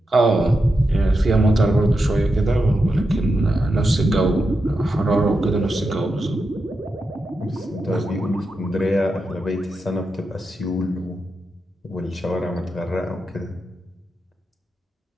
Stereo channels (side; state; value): both; normal; correlation 0.88